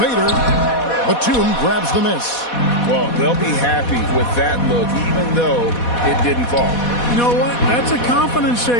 Batum grabs the miss. Well, they'll be happy with that look, even though it didn't fall. You know what? That's a confidence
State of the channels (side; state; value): right; late; 4.1 ms